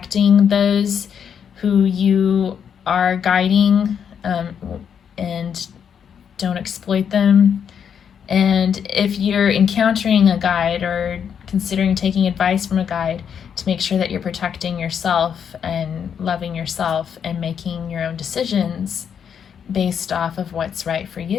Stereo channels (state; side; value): quieter; right; 7.7 dB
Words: those who you are guiding, and don't exploit them. And if you're encountering a guide or considering taking advice from a guide, to make sure that you're protecting yourself and loving yourself and making your own decisions based off of what's right for